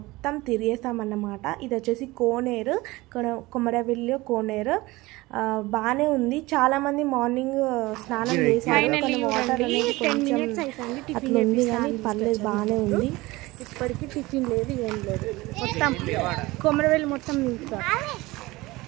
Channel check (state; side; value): quieter; left; 20.7 dB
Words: తిరిగేస్తామన్నమాట. ఇది వచ్చేసి కోనేరు, కొమరవెల్లి కోనేరు. బాగానే ఉంది. చాలామంది మార్నింగ్ స్నానం చేశారు. వాటర్ అనేది కొంచెం అట్లా ఉంది కానీ పర్లేదు, బాగానే ఉంది. ఇప్పటికీ టిఫిన్ లేదు, ఏం లేదు. మొత్తం కొమరవెల్లి మొత్తం